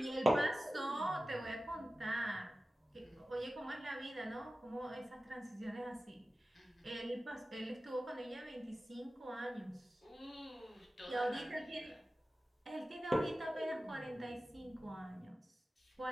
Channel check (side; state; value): both; normal; correlation 0.95